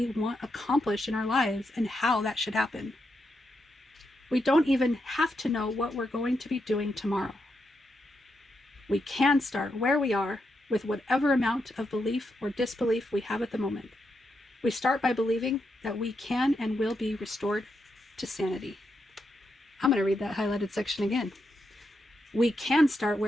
want accomplished in our lives and how that should happen. We don't even have to know what we're going to be doing tomorrow. We can start where we are with whatever amount of belief or disbelief we have at the moment. We start by believing that we can and will be restored to sanity. I'm going to read that highlighted section again. We can start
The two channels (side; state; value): both; normal; correlation 0.83